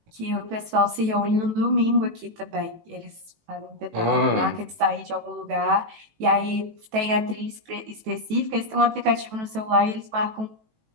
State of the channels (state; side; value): late; left; 18 ms